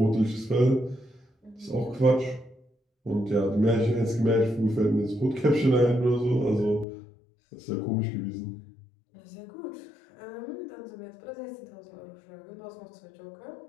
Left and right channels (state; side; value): drops out; right; at 6.9 s